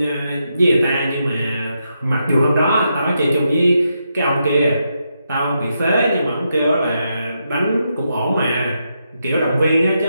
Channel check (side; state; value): both; inverted; correlation -0.83